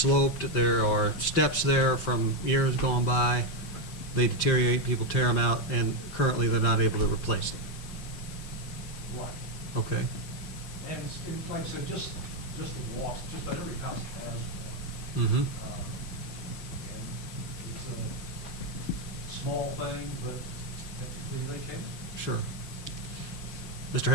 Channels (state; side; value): late; right; 5.6 ms